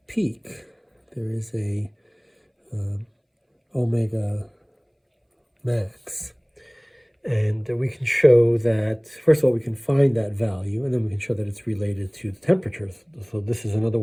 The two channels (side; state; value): both; identical; correlation 1.00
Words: peak. There is a omega max. And we can show that, first of all, we can find that value, and then we can show that it's related to the temperature. So this is another